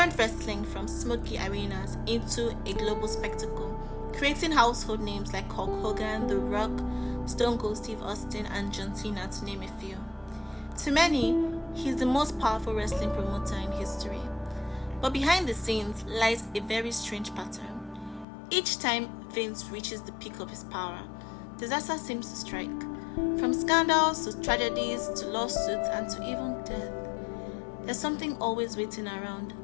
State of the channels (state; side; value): drops out; right; at 18.2 s